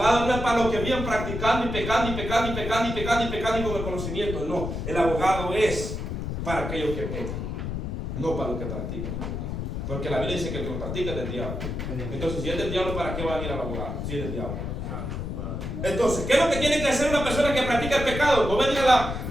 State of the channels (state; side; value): noise; left; rumble, 4 dB below the sound